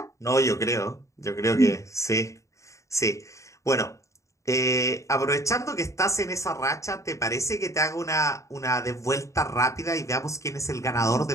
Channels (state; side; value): late; right; 0.15 ms